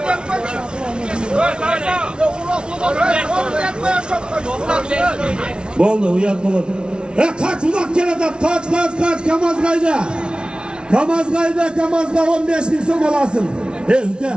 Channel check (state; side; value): late; left; 0.056 ms